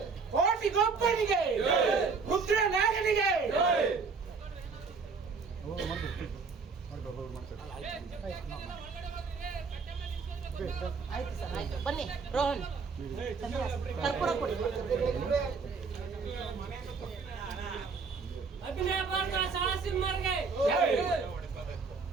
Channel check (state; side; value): quieter; left; 4.9 dB